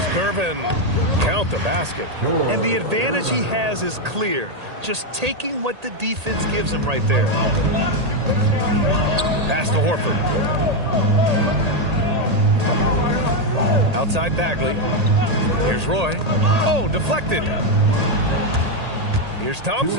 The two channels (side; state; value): left; late; 1.8 ms